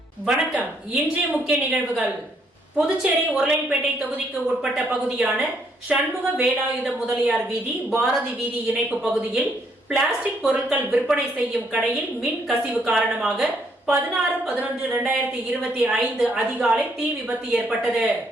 வணக்கம். இன்றைய முக்கிய நிகழ்வுகள். புதுச்சேரி உருளையன்பேட்டை தொகுதிக்கு உட்பட்ட பகுதியான சண்முக வேலாயுத முதலியார் வீதி, பாரதி வீதி இணைப்பு பகுதியில் பிளாஸ்டிக் பொருட்கள் விற்பனை செய்யும் கடையில் மின் கசிவு காரணமாக 16/11/2025 அதிகாலை தீ விபத்து ஏற்பட்டது.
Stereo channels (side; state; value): both; normal; correlation 0.70